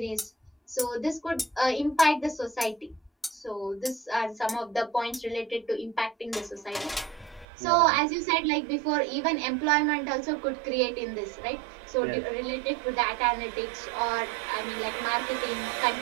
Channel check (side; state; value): left; drops out; at 7.5 s